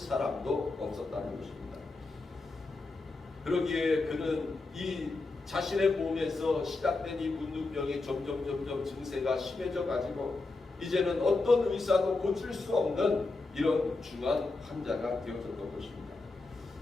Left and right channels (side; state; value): right; quieter; 3.5 dB